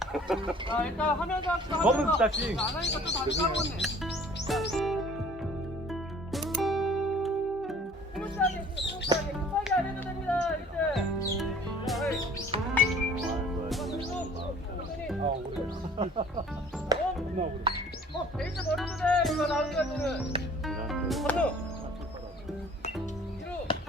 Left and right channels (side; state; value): both; normal; correlation 0.51